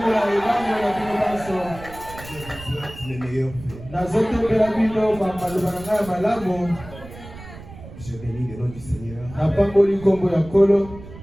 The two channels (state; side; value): noise; right; rumble, 16 dB below the sound